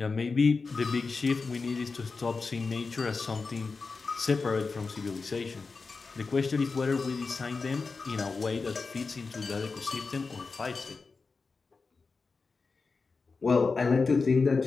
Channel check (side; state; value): right; quieter; 4.4 dB